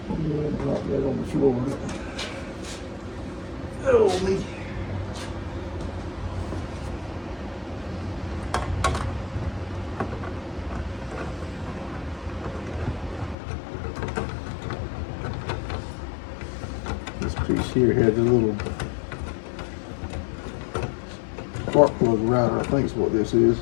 Drop that on the floor. Oh, me. piece here had the little spark plug router, I think is what this is.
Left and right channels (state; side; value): drops out; right; at 13.4 s